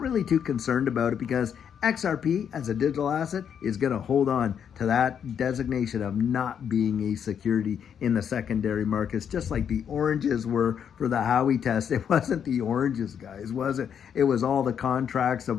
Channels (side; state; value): right; quieter; 8.1 dB